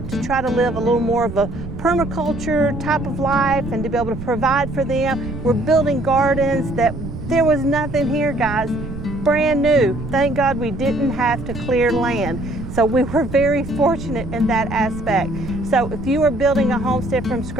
to try to live a little more of a permaculture type of life and to be able to provide for them. We're building gardens that there was nothing here, guys. Brand new. Thank God we didn't have to clear land. So we were very fortunate in that aspect. So if you are building a homestead from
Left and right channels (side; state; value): right; noise; rumble, 9 dB below the sound